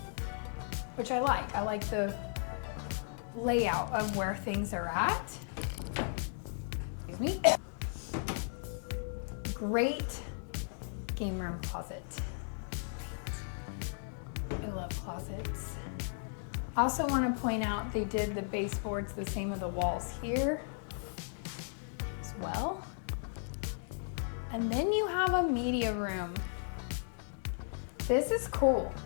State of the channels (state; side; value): silent; right; digital silence